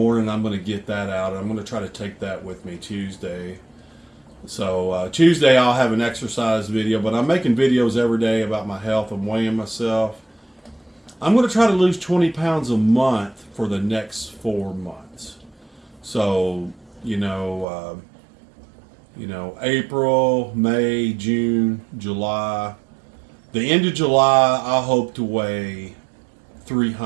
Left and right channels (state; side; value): drops out; left; at 17.7 s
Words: I'm going to get that out. I'm going to try to take that with me Tuesday. So Tuesday I'll have an exercise video, but I'm making videos every day about my health. I'm weighing myself. I'm going to try to lose 20 pounds a month for the next 4 months. So, April, May, June, July. The end of July, I hope to weigh